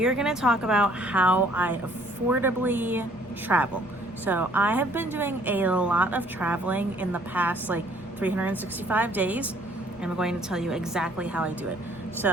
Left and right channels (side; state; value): both; normal; correlation 0.59